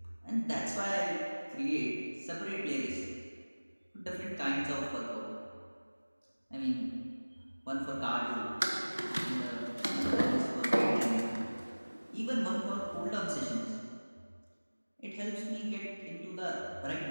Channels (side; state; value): both; inverted; correlation -1.00